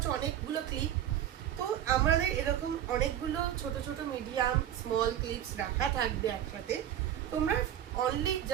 অনেকগুলো ক্লিপ। তো আমাদের এরকম অনেকগুলো ছোট ছোট মিডিয়াম স্মল ক্লিপস রাখা থাকবে একসাথে। তোমরা অনলি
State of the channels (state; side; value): quieter; left; 11.0 dB